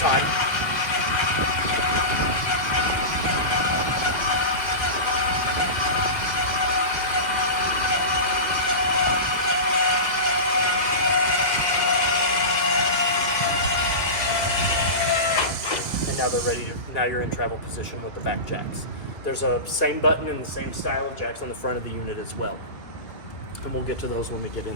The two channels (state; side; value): late; right; 2.2 ms